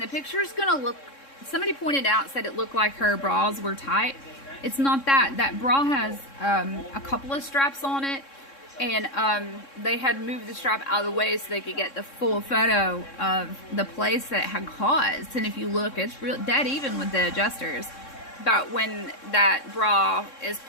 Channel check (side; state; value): right; late; 3.6 ms